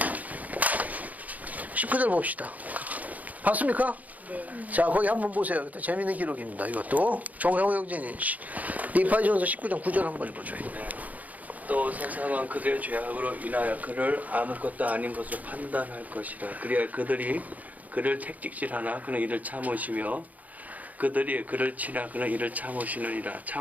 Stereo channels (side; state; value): left; late; 0.077 ms